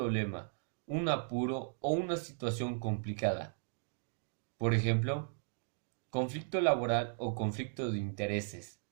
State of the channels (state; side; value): silent; left; digital silence